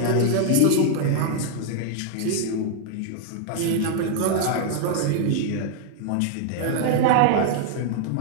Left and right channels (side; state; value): both; different; correlation 0.00